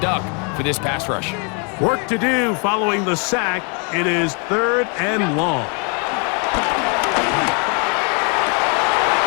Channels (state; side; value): quieter; right; 36.6 dB